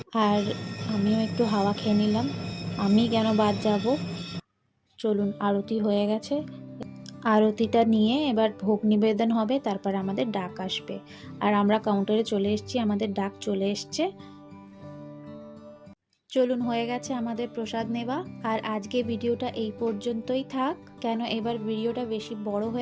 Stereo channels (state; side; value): identical; both; correlation 1.00